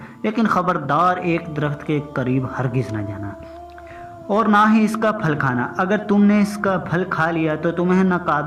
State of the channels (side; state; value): both; identical; correlation 1.00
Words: لیکن خبردار ایک درخت کے قریب ہرگز نہ جانا اور نہ ہی اس کا پھل کھانا۔ اگر تم نے اس کا پھل کھا لیا تو تمہیں